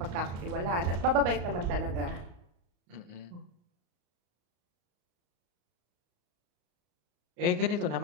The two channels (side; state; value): left; late; 34 ms